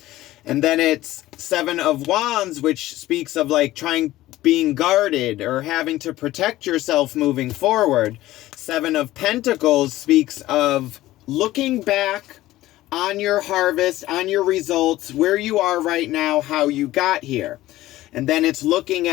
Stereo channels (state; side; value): quieter; right; 16.1 dB